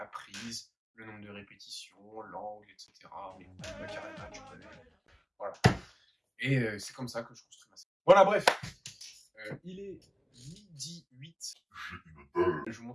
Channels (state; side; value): identical; both; correlation 1.00